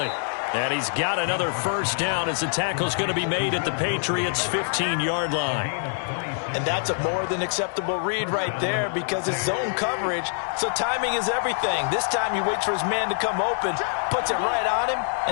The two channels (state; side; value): silent; right; digital silence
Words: And he's got another first down as the tackle's going to be made at the Patriots' 15-yard line. And that's a more than acceptable read right there because it's zone coverage, so timing is everything. This time he waits for his man to come open, puts it right on him,